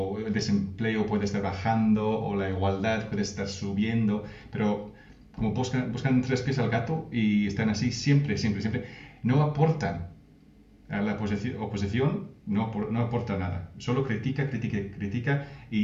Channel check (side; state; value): both; identical; correlation 1.00